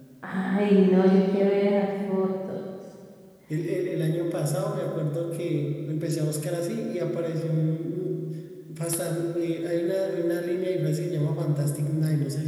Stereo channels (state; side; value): identical; both; correlation 1.00